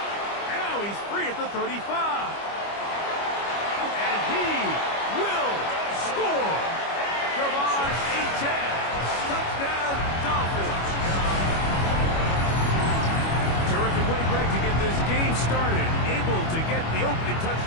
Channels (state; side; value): late; right; 25 ms